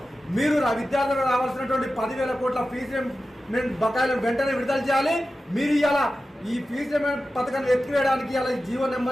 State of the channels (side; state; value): both; normal; correlation 0.93